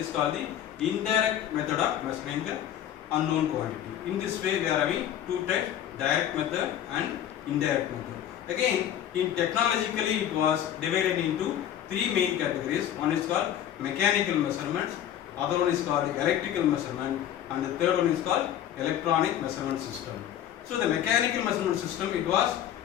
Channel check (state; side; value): quieter; right; 10.8 dB